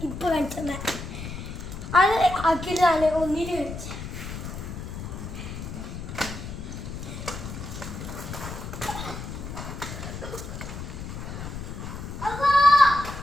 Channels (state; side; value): noise; left; rumble, 8 dB below the sound